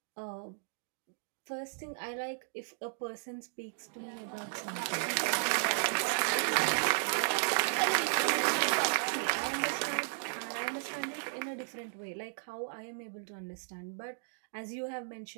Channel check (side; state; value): left; silent; digital silence